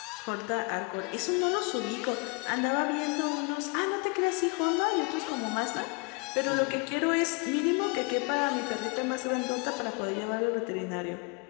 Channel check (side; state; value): right; quieter; 30.8 dB